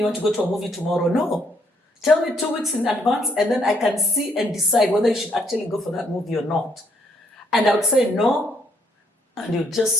want to go to a movie tomorrow. No. Tell me 2 weeks in advance, and then I can see and decide whether you should actually go for that movie or not. And I would say no, and you'd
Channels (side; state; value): both; normal; correlation 0.71